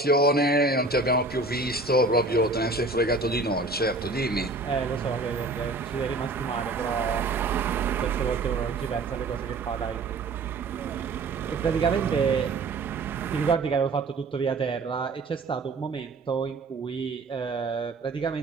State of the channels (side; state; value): left; quieter; 3.3 dB